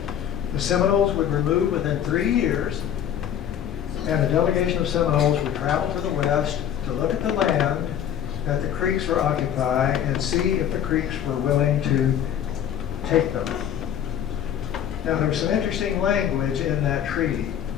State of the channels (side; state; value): right; quieter; 9.6 dB